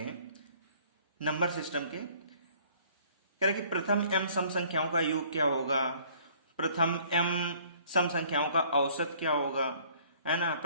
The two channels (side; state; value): both; inverted; correlation -0.57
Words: नंबर सिस्टम के। कह रहे कि प्रथम m सम संख्याओं का योग क्या होगा, प्रथम m सम संख्याओं का औसत क्या होगा, है ना,